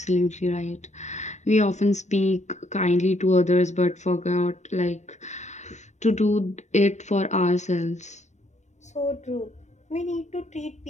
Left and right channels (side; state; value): right; late; 0.34 ms